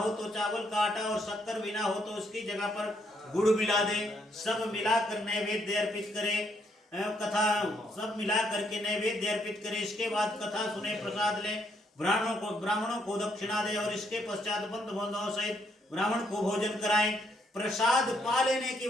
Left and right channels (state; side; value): normal; both; correlation 0.73